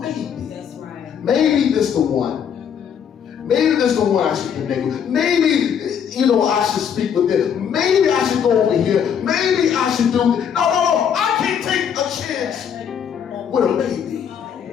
That's right. Maybe this the one. Maybe this the one I should connect with. Maybe, I should speak with them. Maybe I should go over here. Maybe I should do this. No. I can't take a chance with a maybe.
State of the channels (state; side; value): quieter; right; 8.0 dB